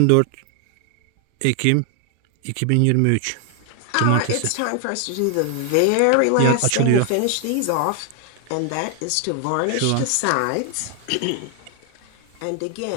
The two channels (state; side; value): different; both; correlation 0.00